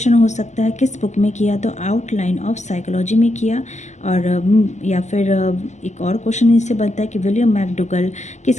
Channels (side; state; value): right; late; 0.34 ms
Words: हो सकता है किस बुक में किया? तो आउटलाइन ऑफ साइकोलॉजी में किया। और या फिर एक और क्वेश्चन इससे बनता है कि विलियम मैकडूगल